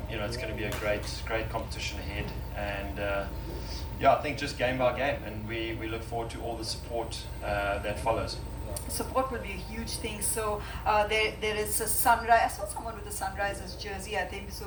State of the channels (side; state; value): both; identical; correlation 1.00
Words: it's going to be a great competition ahead. And I think just game by game, and we look forward to all the support that follows. Support will be a huge thing. So there is a Sunrise. I saw someone with a Sunrisers jersey, I think. So